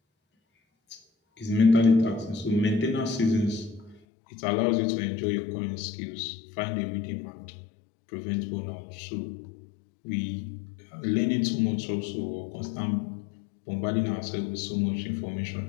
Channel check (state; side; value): drops out; right; at 4.0 s